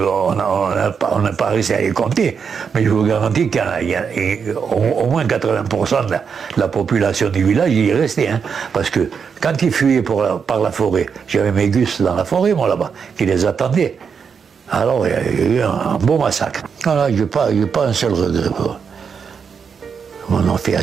n'a pas réussi à les compter, mais je vous garantis qu'il y a au moins 80% de la population du village y est restée. Hein, parce que quand ils fuyaient par la forêt, j'avais mes gus dans la forêt, moi là-bas, qui les attendaient. Alors il y a eu un beau massacre. Voilà, j'ai pas un seul regret. On en fait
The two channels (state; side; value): quieter; left; 6.3 dB